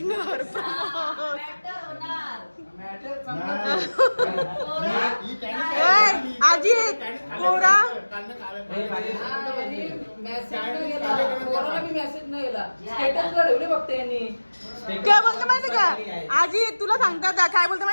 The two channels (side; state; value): both; inverted; correlation -1.00